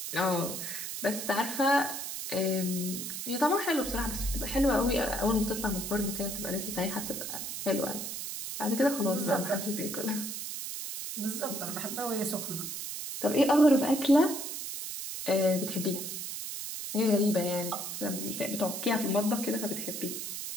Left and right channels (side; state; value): right; noise; hiss, 6 dB below the sound